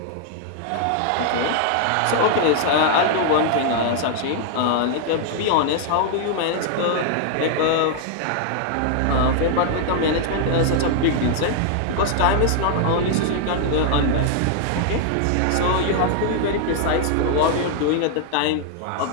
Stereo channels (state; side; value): different; both; correlation 0.00